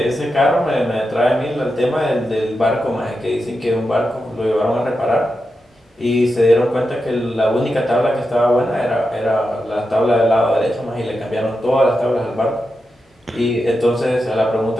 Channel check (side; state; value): both; normal; correlation 0.88